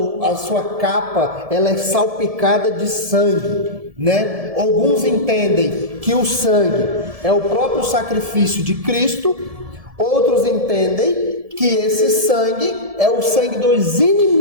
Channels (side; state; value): left; late; 1.7 ms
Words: capa ela é salpicada de sangue, né? Alguns entendem que o sangue é o próprio sacrifício de Cristo, outros entendem que esse sangue é o sangue dos